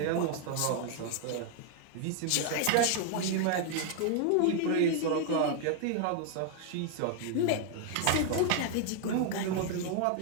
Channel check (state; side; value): different; both; correlation 0.00